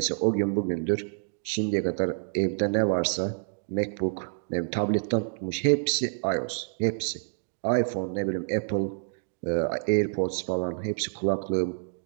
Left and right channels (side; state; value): left; silent; digital silence